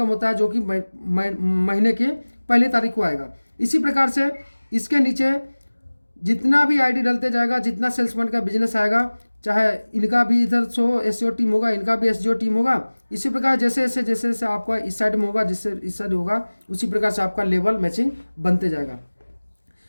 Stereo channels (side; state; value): both; inverted; correlation -1.00